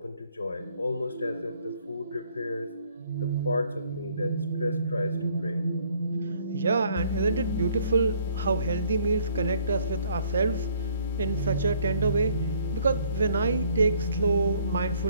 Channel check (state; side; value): inverted; both; correlation -0.62